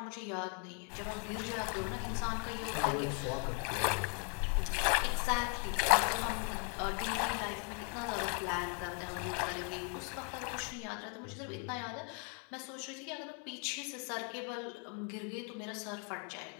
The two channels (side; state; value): right; quieter; 39.9 dB